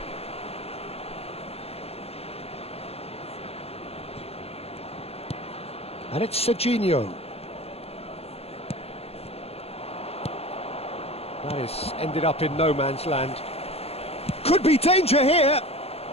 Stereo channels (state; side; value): late; right; 0.29 ms